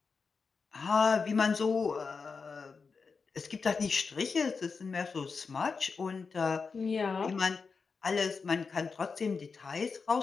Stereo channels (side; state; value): right; quieter; 5.0 dB